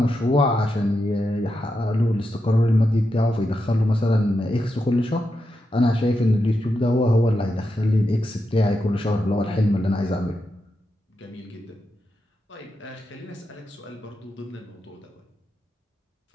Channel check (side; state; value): both; normal; correlation 0.86